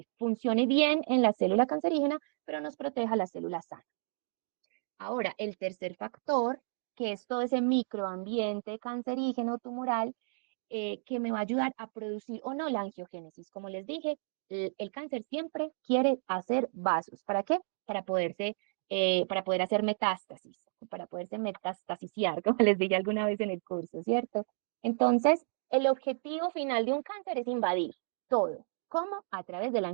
funcione bien en la célula cancerígena, pero nos proteja la célula sana. Ahora, el tercer factor, que es todo ese microambiente cancerígeno tumoral, que me va a ayudar a producir o no la angiogénesis. Como les dije, el cáncer siempre quiere hacer vasos. ¿Para qué? Para poder hacer metástasis, para poderse metastasiciar, como les dije alguna vez en el curso, ¿cierto? Entonces, el objetivo final de un cáncer es invadir todo. ¿Cómo? A través de la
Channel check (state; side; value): silent; left; digital silence